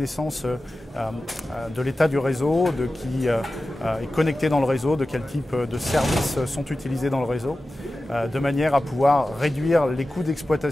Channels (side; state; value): both; normal; correlation 0.94